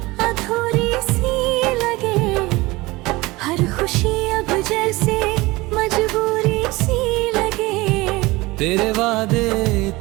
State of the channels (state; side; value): quieter; left; 21.5 dB